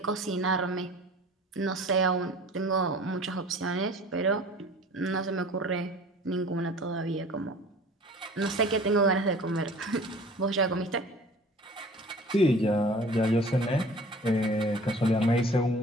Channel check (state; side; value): normal; both; correlation 0.45